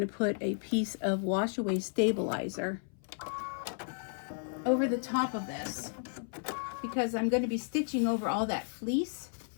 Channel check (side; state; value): right; silent; 56 dB below the other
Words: put a piece of wash away stabilizer over the top of this because I'm going to be stitching over all that fleece.